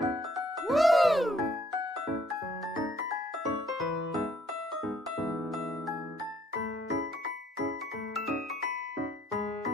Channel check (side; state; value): both; normal; correlation 0.65